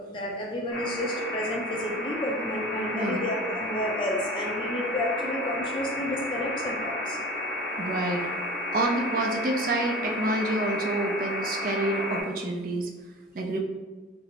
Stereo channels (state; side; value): normal; both; correlation 0.36